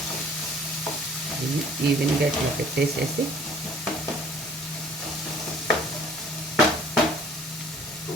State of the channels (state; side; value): normal; both; correlation 0.54